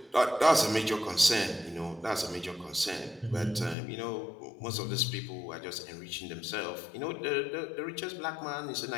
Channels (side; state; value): right; drops out; at 3.8 s